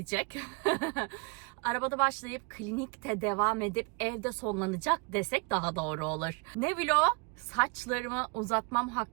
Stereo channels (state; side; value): quieter; left; 32.3 dB